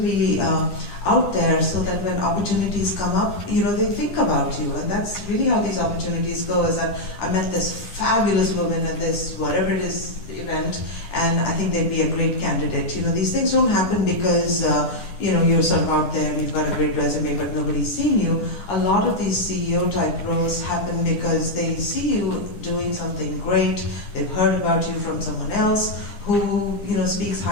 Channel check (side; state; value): right; late; 9.7 ms